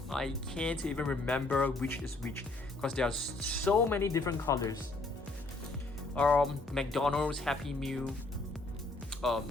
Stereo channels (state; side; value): quieter; right; 3.1 dB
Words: I can't even remember which is which because there are so many different colors. McDonald's Happy Meal